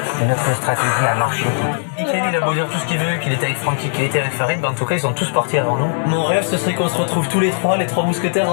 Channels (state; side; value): silent; right; digital silence